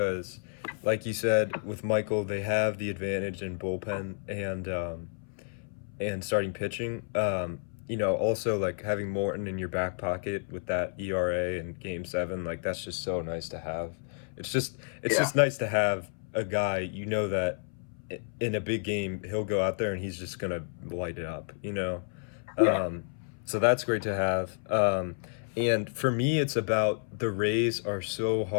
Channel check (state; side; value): silent; right; 57 dB below the other